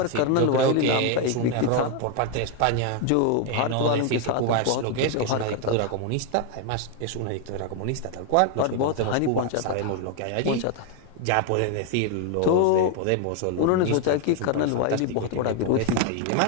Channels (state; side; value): different; both; correlation 0.01